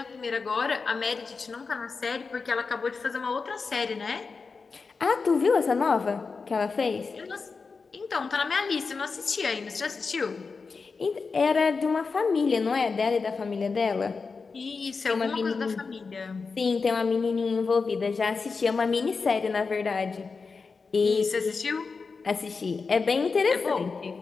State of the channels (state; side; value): quieter; right; 4.7 dB